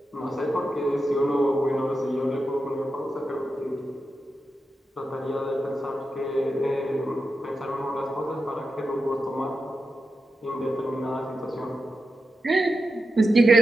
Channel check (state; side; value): normal; both; correlation 0.89